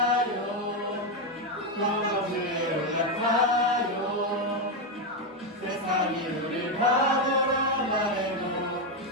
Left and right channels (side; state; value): both; normal; correlation 0.06